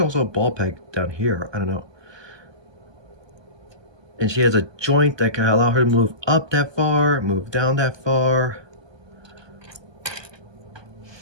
a ball peg down here. I don't know. And she has a joint that can allow her to move up that far, move down that far.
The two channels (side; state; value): left; late; 1.2 ms